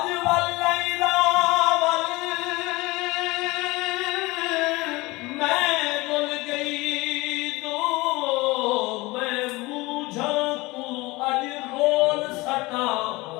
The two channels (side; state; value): right; quieter; 22.1 dB